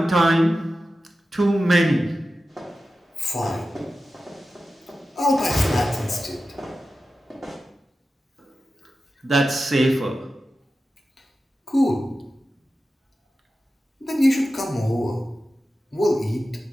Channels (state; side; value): normal; both; correlation 0.93